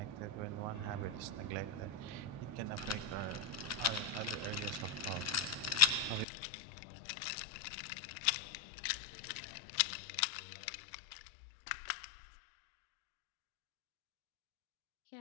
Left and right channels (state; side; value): drops out; right; at 6.2 s